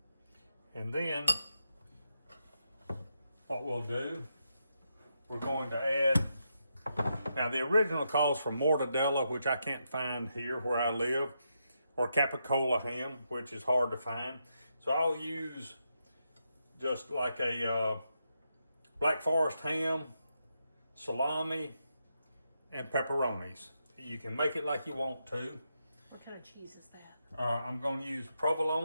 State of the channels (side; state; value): both; inverted; correlation -0.83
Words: And then what we'll do, we're going to add, now the original calls for mortadella, which I can't find here where I live, or capicola ham, which is hard to find. So I'll use just like a Black Forest ham, salami, and pepperonis. You can make it like you want to. What kind of cheese is that? I'm going to use